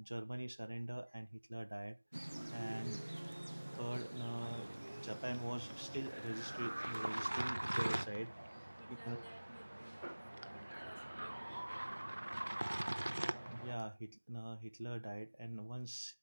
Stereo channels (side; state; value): both; inverted; correlation -1.00